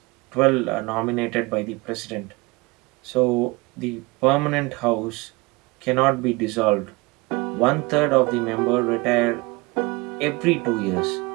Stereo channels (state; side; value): quieter; left; 24.9 dB